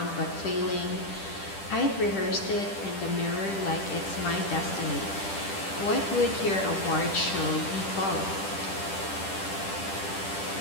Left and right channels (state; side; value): late; right; 10 ms